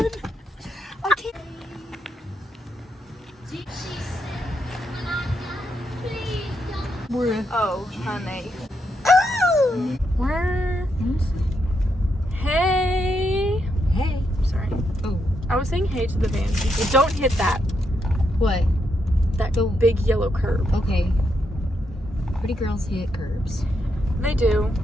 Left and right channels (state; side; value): normal; both; correlation 0.80